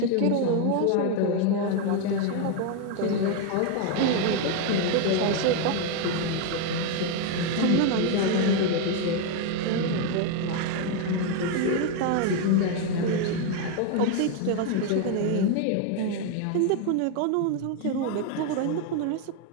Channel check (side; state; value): both; different; correlation 0.01